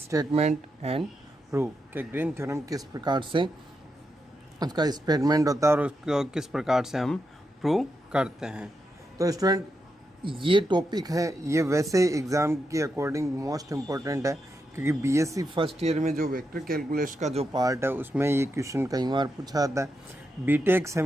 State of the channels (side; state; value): both; normal; correlation 0.85